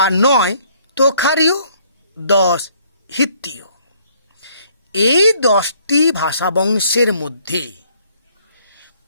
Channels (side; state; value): both; inverted; correlation -0.64